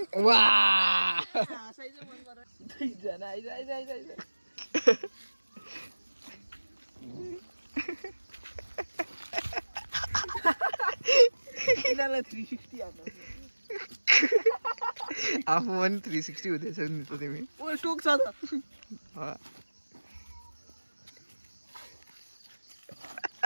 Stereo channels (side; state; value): both; inverted; correlation -1.00